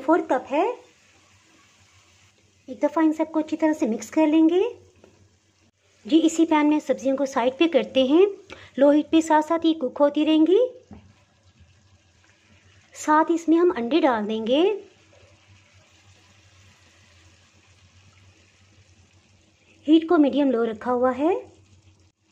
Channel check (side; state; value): both; identical; correlation 1.00